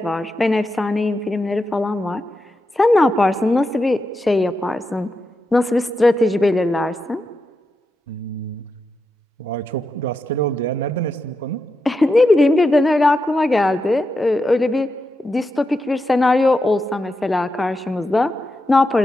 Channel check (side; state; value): both; normal; correlation 0.87